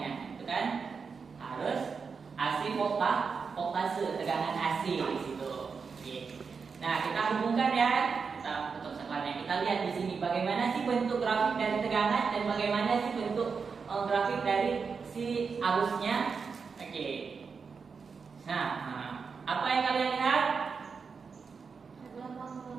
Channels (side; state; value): left; quieter; 5.4 dB